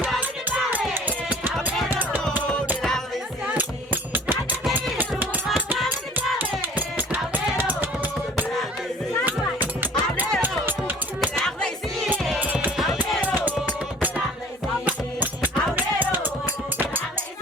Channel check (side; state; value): both; normal; correlation 0.48